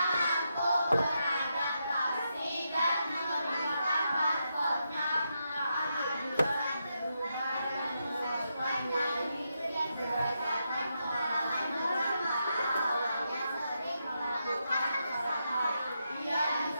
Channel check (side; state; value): both; inverted; correlation -0.83